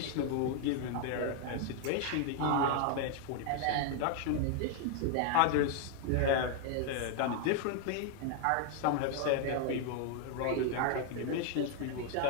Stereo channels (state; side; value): different; both; correlation 0.01